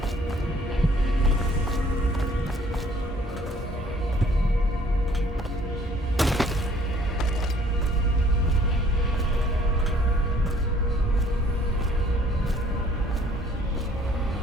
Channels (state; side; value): normal; both; correlation 0.59